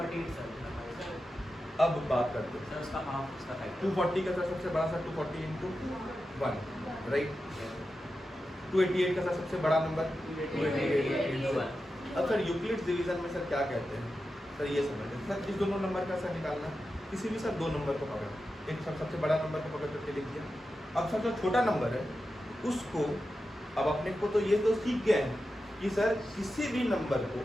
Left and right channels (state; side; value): normal; both; correlation 0.91